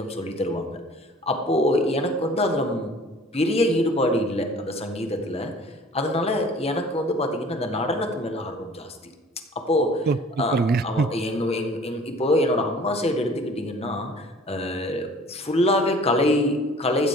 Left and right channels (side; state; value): both; normal; correlation 0.49